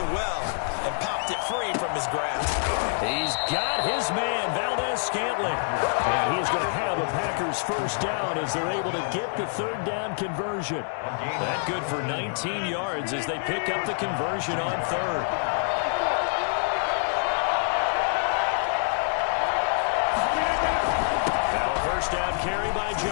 well and popped it free from his grasp. He's got his man, Valdez-Scantling. And he's going to have the Packers' first down as they're able to get the 3rd down conversion. That good for 19 yards as they pick up the conversion on 3rd. carry by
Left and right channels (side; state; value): right; silent; digital silence